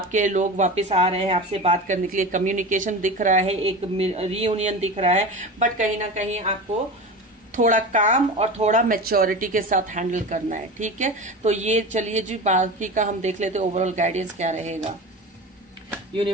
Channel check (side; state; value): both; normal; correlation 0.29